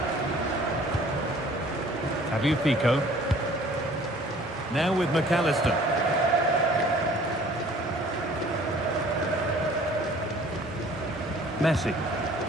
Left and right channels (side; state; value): both; normal; correlation 0.52